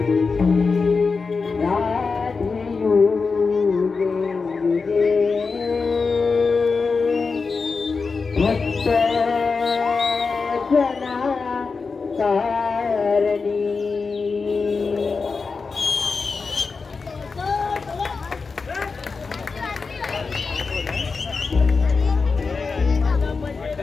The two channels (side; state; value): right; quieter; 4.6 dB